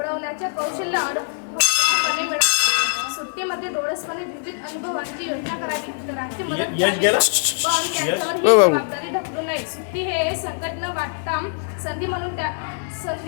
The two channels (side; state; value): right; silent; digital silence